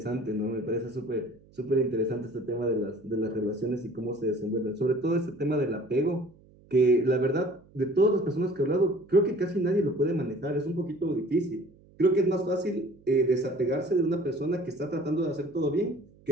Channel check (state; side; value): noise; right; hum, 27 dB below the sound